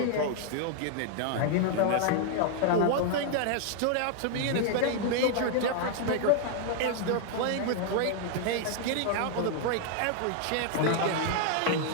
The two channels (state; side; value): different; both; correlation 0.00